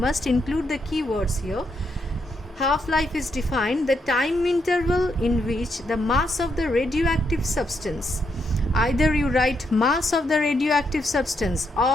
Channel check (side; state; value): both; normal; correlation 0.79